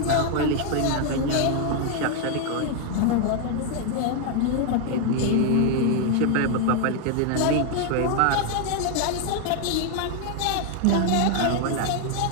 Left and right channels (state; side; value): different; both; correlation 0.00